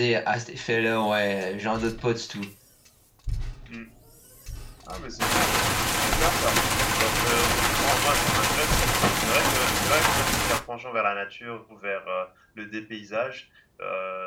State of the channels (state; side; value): identical; both; correlation 1.00